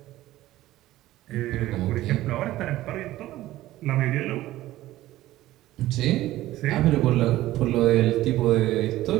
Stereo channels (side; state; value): left; quieter; 15.6 dB